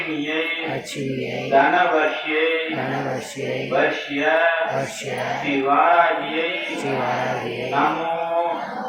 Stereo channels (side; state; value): both; identical; correlation 1.00